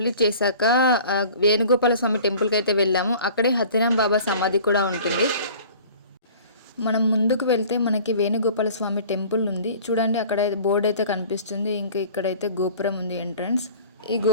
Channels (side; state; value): both; inverted; correlation -0.46